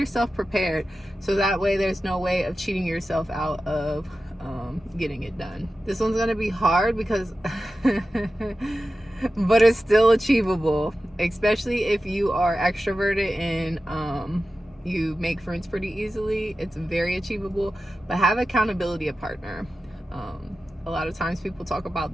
prepared, so that way there's no way of cheating yourself out of getting it done. This one's gonna be hard because but it's still achievable, especially if you are extroverted and you make friends pretty easily. It's very achievable, but have accountability a partner. A lot of times people talk about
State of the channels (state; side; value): normal; both; correlation 0.93